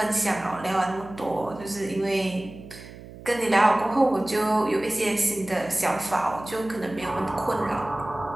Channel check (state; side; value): noise; right; hum, 16 dB below the sound